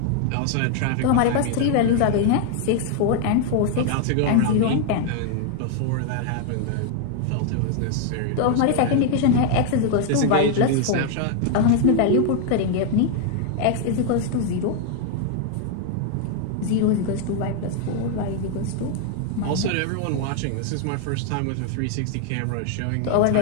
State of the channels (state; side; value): different; both; correlation 0.00